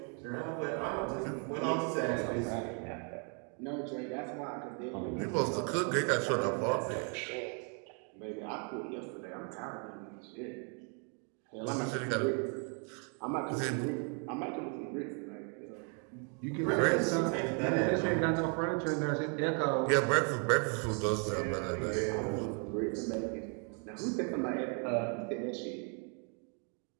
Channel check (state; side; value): quieter; left; 39.5 dB